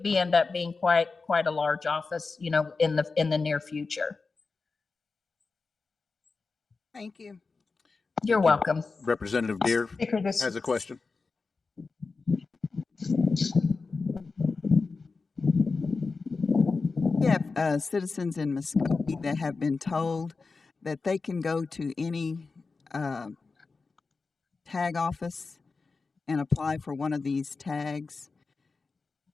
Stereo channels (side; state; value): right; quieter; 4.2 dB